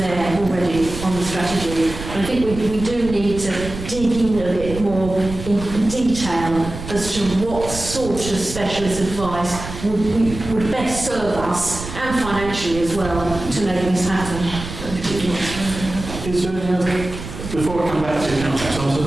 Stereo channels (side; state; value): right; noise; rumble, 10 dB below the sound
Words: already on the strategy. But I think we do need to dig in a bit more in detail as to what sort of specialist advice would best serve us, and financially as well, to make this happen. Is there any other, before I come back to council,